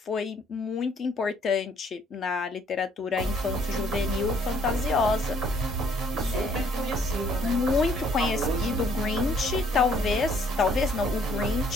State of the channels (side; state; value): both; normal; correlation 0.63